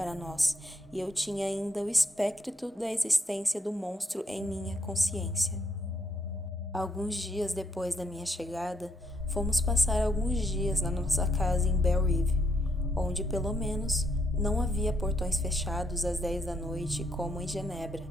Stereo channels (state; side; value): normal; both; correlation 0.74